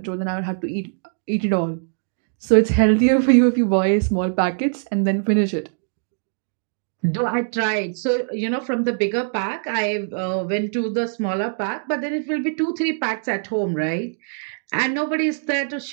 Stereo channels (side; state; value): left; silent; digital silence